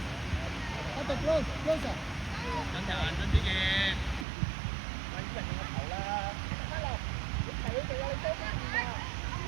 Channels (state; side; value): drops out; left; at 4.2 s